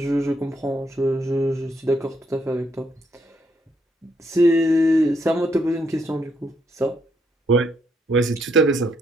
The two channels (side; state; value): both; normal; correlation 0.74